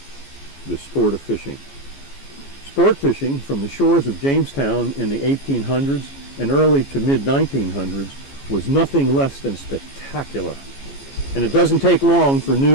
the sport of fishing. Sport fishing from the shores of Jamestown in the 1800s and early to mid-1900s was nothing less than spectacular. And it doesn't take long for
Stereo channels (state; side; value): late; right; 14 ms